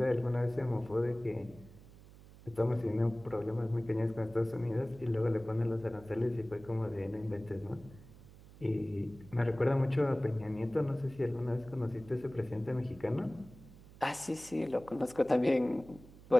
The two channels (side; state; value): right; noise; hum, 20 dB below the sound